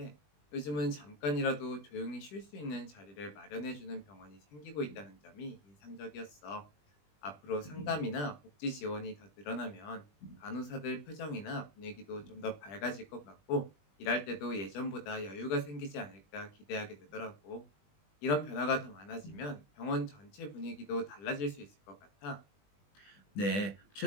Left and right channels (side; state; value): right; late; 20 ms